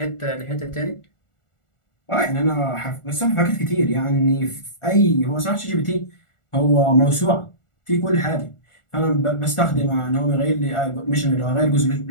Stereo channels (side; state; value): right; late; 1.4 ms